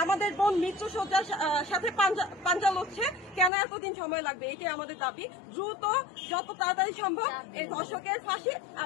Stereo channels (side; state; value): right; drops out; at 3.5 s